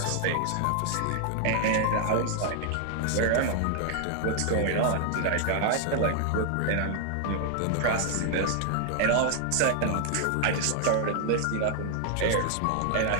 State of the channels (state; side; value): different; both; correlation 0.00